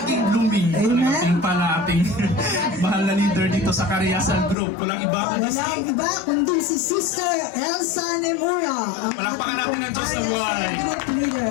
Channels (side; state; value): right; drops out; at 4.5 s